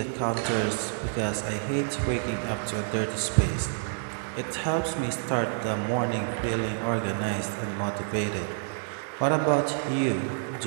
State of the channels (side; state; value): left; silent; digital silence